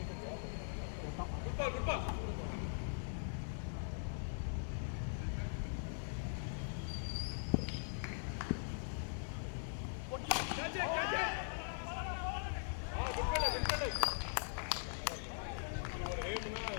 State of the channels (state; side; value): silent; right; digital silence